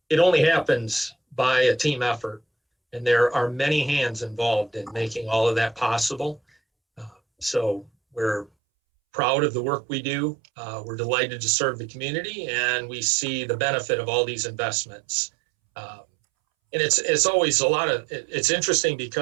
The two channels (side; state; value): left; drops out; at 8.5 s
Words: it only happens by a team effort, and there are many hands involved in making all of that possible. So we're proud of the work we do. We're delighted to serve the community, and we see the benefit of all these investments. And it's always it's interesting